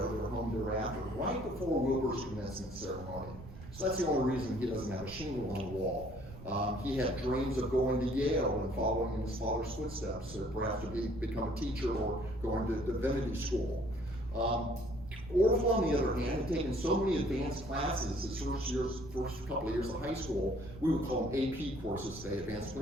They were home thereafter, right before Wilbur's commencement ceremony. So that's the only reason he doesn't have a shingle on the wall. He had dreams of going to Yale and following in his father's footsteps, perhaps to become a teacher or going to divinity school. Orville, on the other hand, had taken so many advanced classes his first couple of years of high school. We would call them AP courses today, advanced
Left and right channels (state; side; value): noise; right; rumble, 15 dB below the sound